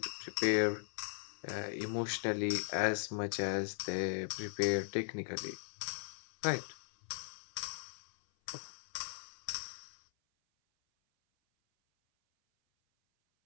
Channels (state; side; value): silent; right; 52 dB below the other